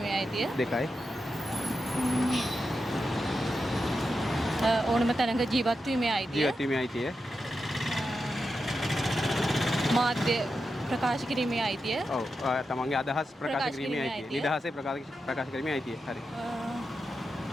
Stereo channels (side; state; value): both; normal; correlation 0.88